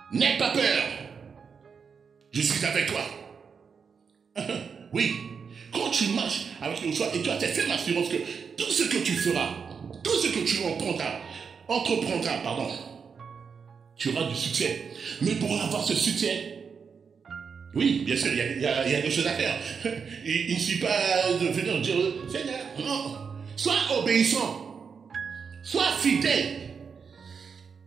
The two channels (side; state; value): left; quieter; 6.0 dB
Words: N'aie pas peur. Je suis avec toi. Oui, quand tu marches avec le choix, et toi, tu as fait l'assurance que tout ce que tu feras, tout ce que tu entreprendras, tu auras du succès. Mais pour avoir ce succès, oui, bien sûr, il y a des choses à faire. Il ne suffit pas de venir dire, Seigneur, non. Sois obéissant. Sois fidèle.